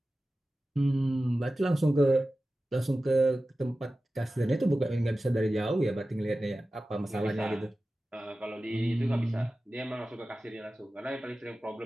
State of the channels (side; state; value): both; normal; correlation 0.95